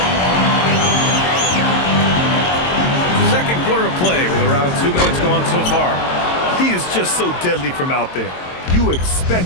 Second quarter of play with around 2 minutes gone so far. He is just so deadly from out there. You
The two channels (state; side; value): late; right; 22 ms